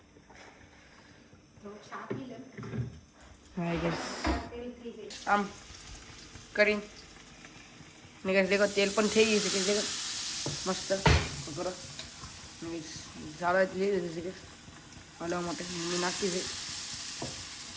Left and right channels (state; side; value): identical; both; correlation 1.00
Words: હા ગાઈસ આમ કરીને ને ગાઈસ દેખો તેલ પણ થઈ ગયું છે કે દેખો મસ્ત પકોડો ઝાડો લઈ લીધું છે ગાઈસ હલાવવા માટે. મમ્મી નાખતી છે.